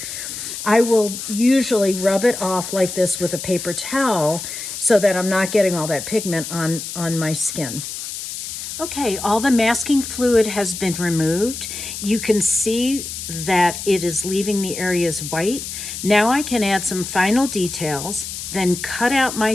I will usually rub it off like this with a paper towel so that I'm not getting all that pigment on my skin. Okay, all the masking fluid has been removed. You can see that it is leaving the areas white. Now I can add some final details, then cut out my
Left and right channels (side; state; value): left; noise; hiss, 8 dB below the sound